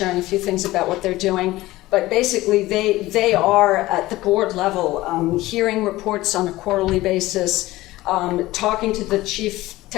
a few things about what they're doing. But basically, they are at the board level, hearing reports on a quarterly basis, talking to the chief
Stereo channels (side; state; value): right; quieter; 17.8 dB